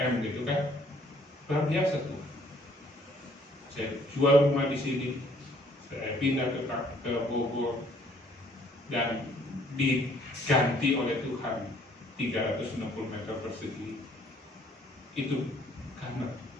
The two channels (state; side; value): normal; both; correlation 0.61